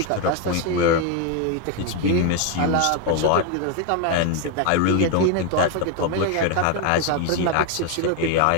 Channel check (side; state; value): both; different; correlation 0.01